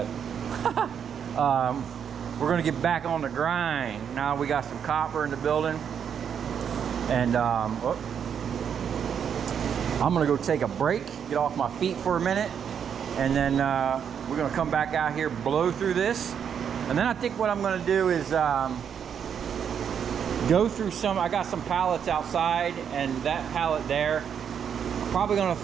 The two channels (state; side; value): quieter; left; 7.9 dB